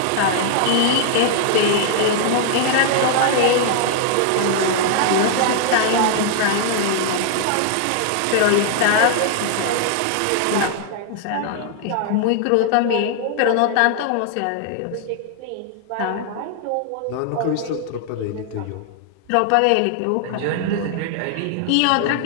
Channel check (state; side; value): different; both; correlation 0.00